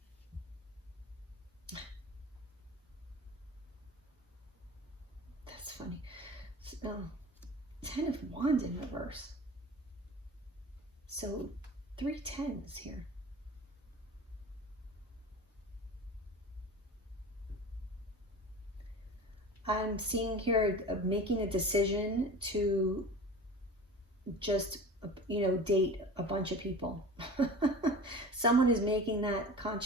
That's funny. Oh, 10 of Wands in reverse. So 3 10s here. I'm seeing here making a decision to just, you know, date a bunch of people. Someone is making that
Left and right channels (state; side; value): normal; both; correlation 0.36